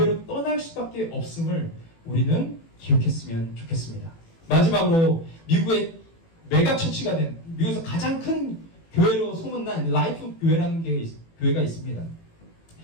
떠날 수밖에 없음을 우리는 기억했으면 좋겠습니다. 마지막으로 미국의 메가처치가 된 미국에서 가장 큰 교회로 소문난 라이프 교회라는 교회가 있습니다.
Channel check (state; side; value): late; right; 18 ms